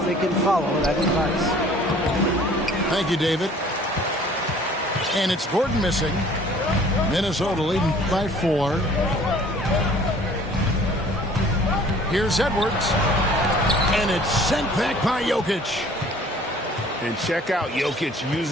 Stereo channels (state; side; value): normal; both; correlation 0.52